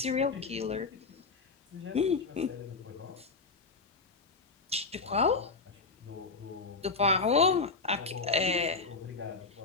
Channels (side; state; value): right; quieter; 4.2 dB